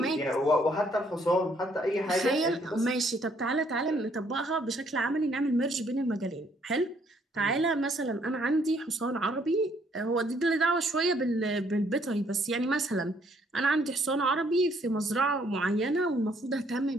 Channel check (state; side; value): normal; both; correlation 0.66